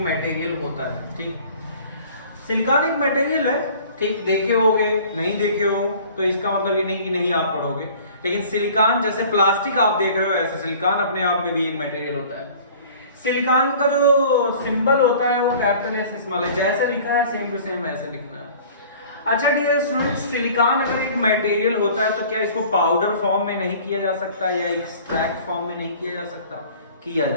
मटेरियल होता है। ठीक, सिलिकॉन एक मटेरियल है। ठीक, देखे होगे, नहीं देखे हो तो इसका मतलब ये नहीं कि नहीं आप पढ़ोगे, लेकिन सिलिकॉन जैसे प्लास्टिक आप देख रहे हो, ऐसे सिलिकॉन अपने आप में भी एक मटेरियल होता है। सिलिकॉन का जो सिंबल होता है वो कैपिटल एस स्मॉल है, जैसे लिखा है सेम टू सेम ऐसे लिखना है। अच्छा डियर स्टूडेंट्स, सिलिकॉन अगर एक मटेरियल होता है तो क्या इसको पाउडर फॉर्म में नहीं किया जा सकता या एक्सट्रैक्ट फॉर्म में नहीं किया जा सकता? किया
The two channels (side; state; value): both; inverted; correlation -0.48